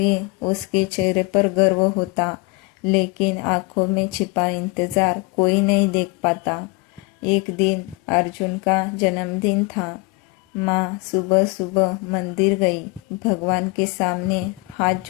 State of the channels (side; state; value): right; quieter; 25.8 dB